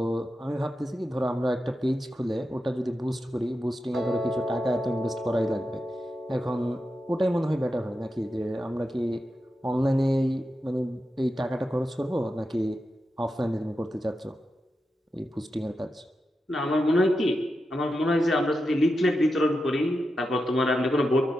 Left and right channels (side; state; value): both; normal; correlation 0.89